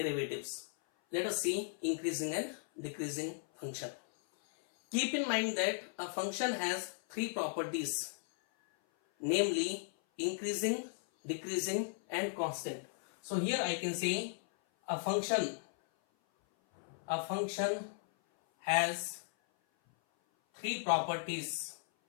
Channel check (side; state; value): right; silent; 54 dB below the other